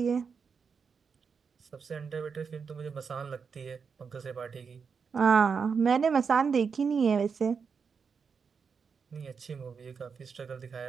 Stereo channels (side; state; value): left; quieter; 5.8 dB